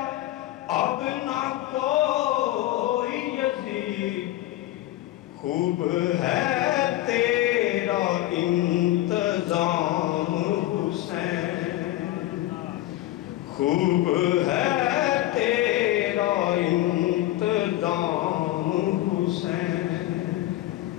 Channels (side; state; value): right; quieter; 15.5 dB